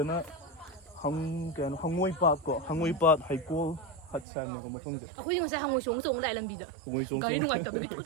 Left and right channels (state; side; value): drops out; left; at 4.2 s